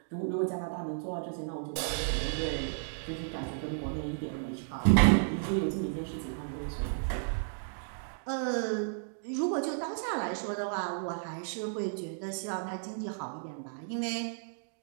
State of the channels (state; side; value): silent; left; digital silence